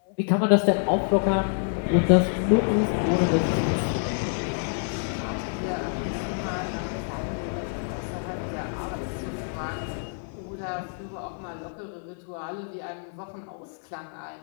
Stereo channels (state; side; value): silent; right; digital silence